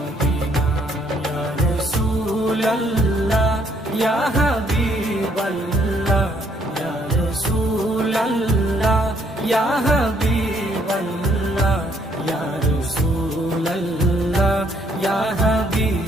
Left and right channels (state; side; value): normal; both; correlation 0.68